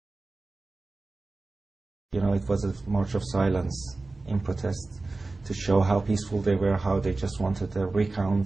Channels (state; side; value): quieter; left; 3.4 dB